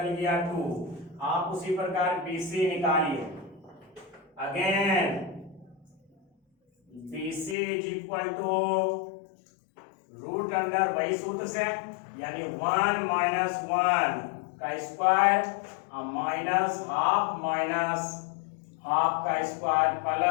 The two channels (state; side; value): drops out; right; at 7.6 s